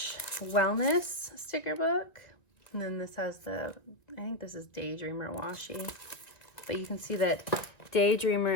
wellness sticker book. And then this has I think this is Daydreamer washi. But you can see that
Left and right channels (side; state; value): right; late; 1.9 ms